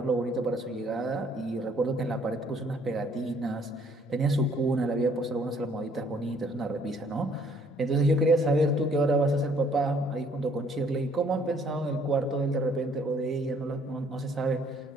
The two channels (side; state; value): both; normal; correlation 0.62